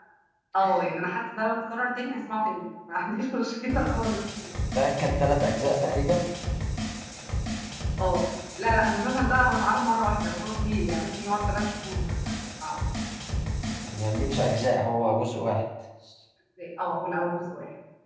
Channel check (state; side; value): identical; both; correlation 1.00